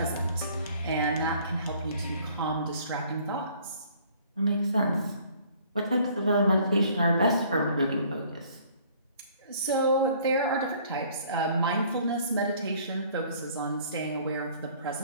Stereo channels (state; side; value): inverted; both; correlation -0.56